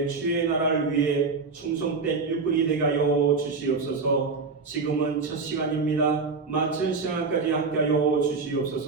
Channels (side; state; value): left; quieter; 4.4 dB